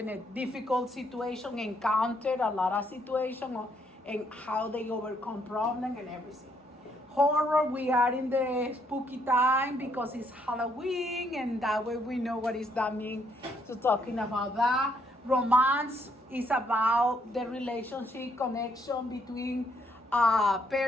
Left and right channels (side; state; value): both; normal; correlation 0.71